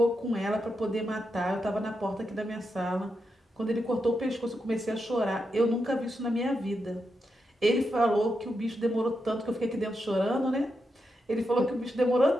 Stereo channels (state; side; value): normal; both; correlation 0.85